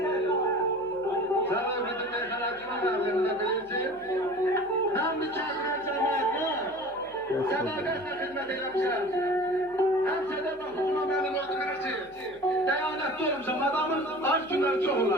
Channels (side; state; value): left; noise; hum, 28 dB below the sound